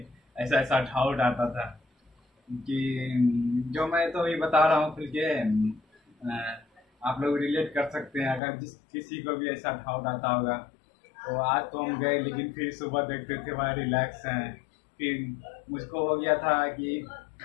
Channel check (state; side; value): drops out; right; at 8.4 s